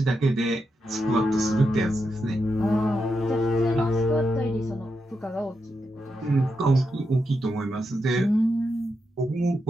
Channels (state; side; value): normal; both; correlation 0.85